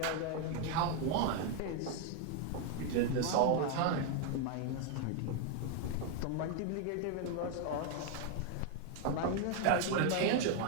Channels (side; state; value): both; different; correlation 0.01